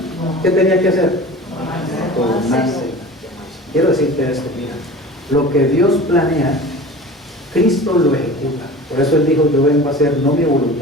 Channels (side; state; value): both; normal; correlation 0.38